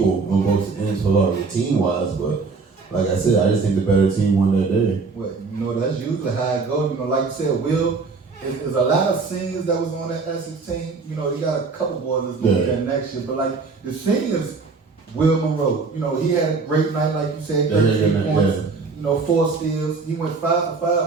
on both ends for team wise, but like I said, I just think the better team won that day. Well, that's usually how it goes. Like you said, Will, there's a lot of seniors that was on that Essex team. You got a couple boys that's going to be there next year, but like the seniors, Will Monroe, he had a great night, like you said, 13 points. 4 steals. He went 5 for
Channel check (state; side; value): quieter; left; 4.4 dB